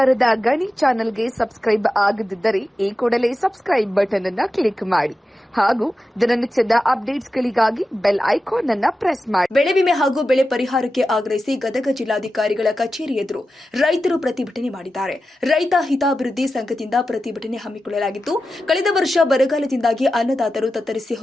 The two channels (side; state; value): both; normal; correlation 0.92